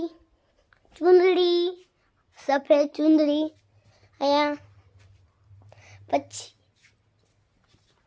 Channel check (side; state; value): both; identical; correlation 1.00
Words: चुंदड़ी, सफेद चुंदड़ी। यहाँ